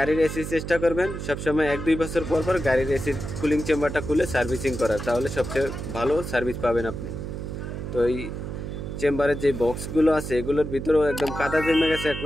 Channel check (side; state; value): right; noise; hum, 6 dB below the sound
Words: এসি চেষ্টা করবেন সবসময় 1-2 বছর পর পর গাড়ির এসির কুলিং চেম্বারটা খুলে সার্ভিসিং করার, তাহলে সবচেয়ে ভালো সার্ভিস পাবেন আপনি। তো এই চেম্বারের যে বক্সগুলো আছে এগুলোর ভিতরেও একদম কাদা জমে গেছে।